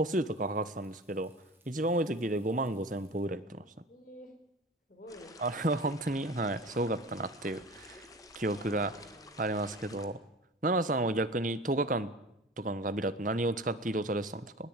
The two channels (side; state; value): both; normal; correlation 0.38